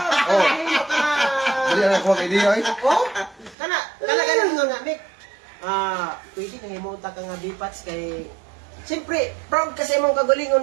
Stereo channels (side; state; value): left; drops out; at 3.6 s